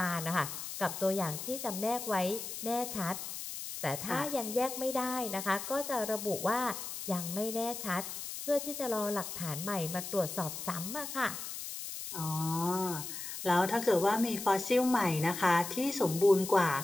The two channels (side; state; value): left; noise; hiss, 7 dB below the sound